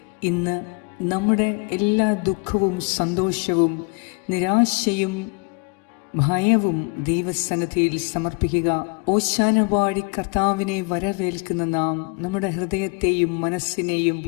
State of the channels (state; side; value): quieter; right; 32.7 dB